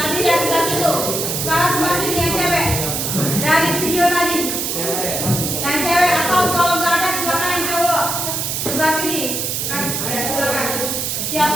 yang sebelah situ. Sekarang sebelah sini yang cewek. Dari video tadi. Yang cewek atau kalau nggak ada silakan yang cowok. Sebelah sini. Kan? Ya silakan.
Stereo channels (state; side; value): noise; right; hiss, 1 dB below the sound